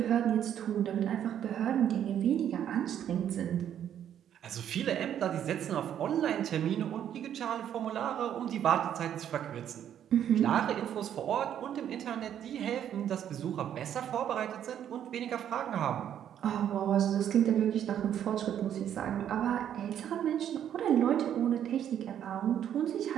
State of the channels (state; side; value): quieter; left; 9.9 dB